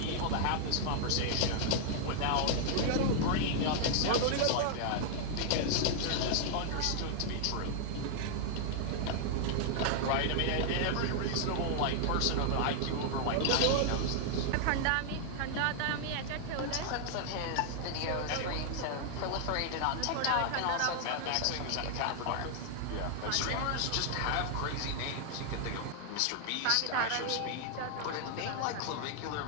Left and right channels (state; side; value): different; both; correlation 0.00